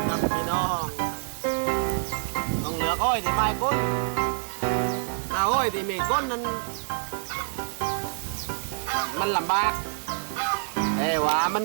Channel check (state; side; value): silent; left; digital silence